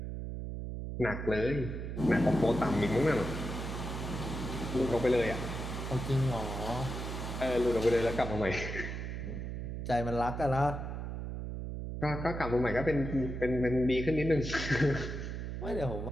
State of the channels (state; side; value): noise; right; hum, 5 dB below the sound